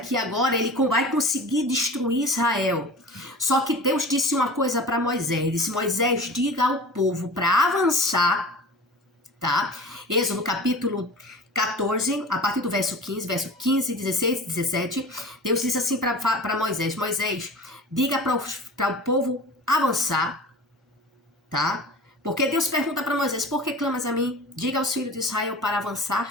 agora ele vai conseguir destruir Israel. Só que Deus disse uma coisa para Moisés. Ele disse: Moisés, diga ao povo para avançar, tá? Êxodo capítulo 14, a partir do verso 15, 16, 17, Deus disse assim para Moisés: Moisés, diga para o povo avançar, tá? Porque Deus pergunta para Moisés: por que clamas a mim? Diga aos filhos de Israel para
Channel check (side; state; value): both; normal; correlation 0.37